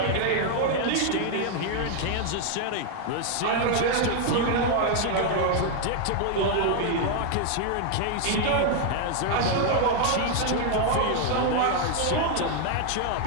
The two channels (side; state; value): both; different; correlation 0.00